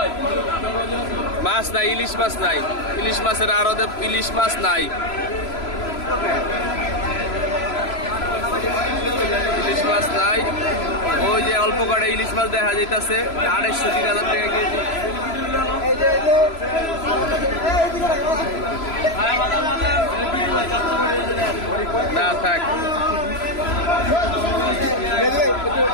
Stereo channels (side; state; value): right; late; 3.0 ms